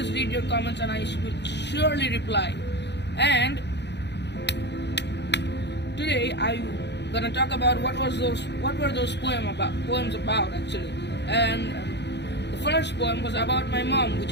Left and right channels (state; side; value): late; right; 0.50 ms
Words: read your comments and I will surely reply. And today I'm gonna talk about what were those poems about actually. And the first poem was about my mom,